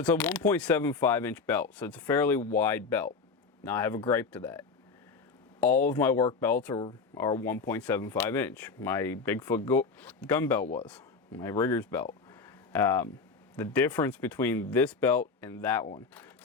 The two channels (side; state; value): right; quieter; 4.7 dB